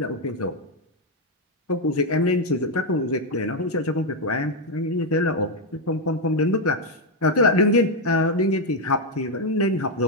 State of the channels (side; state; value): both; normal; correlation 0.02